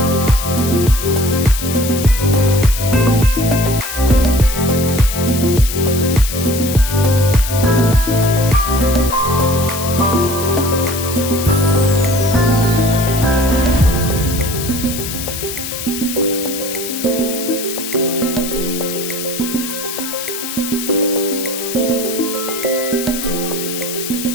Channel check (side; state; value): left; noise; hiss, 7 dB below the sound